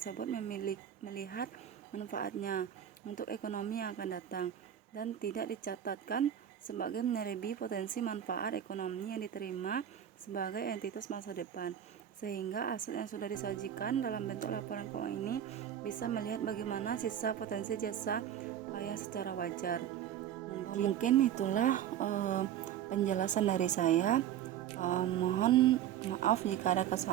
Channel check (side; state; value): left; quieter; 10.2 dB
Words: melihat manfaatnya untuk ekonomi yang akan datang dan tidak dicatatkan sebagai menyelebi potensi manfaat ekonomi yang diterima sebagai entitas masa depan, sehingga aset yang sudah disajikan dalam bentuk laporan keuangan ini bisa melihat bagaimana sisa potensi jasa yang secara wajar. Mungkin itulah penjelasan dari saya. Mohon maaf jika ada